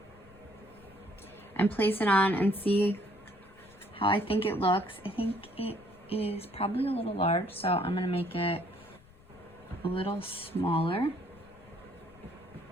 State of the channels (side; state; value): left; noise; rumble, 26 dB below the sound